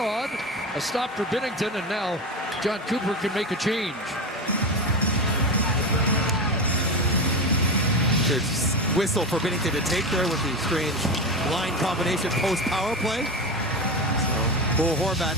A stop for Binnington, and now John Cooper can make a change. There's whistle for Binnington to take there with the strange line combination post-power play. Bo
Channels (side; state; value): both; normal; correlation 0.20